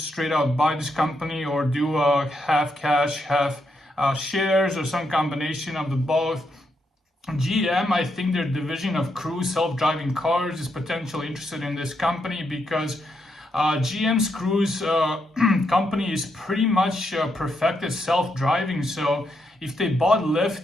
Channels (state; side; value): normal; both; correlation 0.80